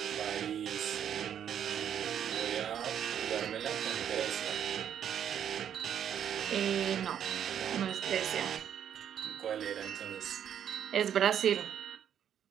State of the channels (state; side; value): quieter; left; 9.2 dB